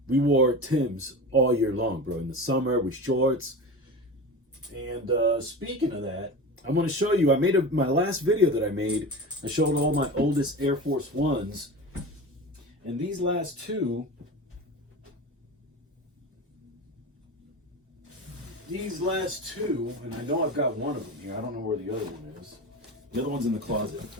we wore Timbs all year long, bro. In the summer with shorts. And speaking of that, I'm going to show you, my last video that I made, I showed all my oldest Air Force Ones. And these last two, and I know I've got one of them here. I don't know where the other one is. The other one's in the closet.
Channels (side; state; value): both; normal; correlation 0.29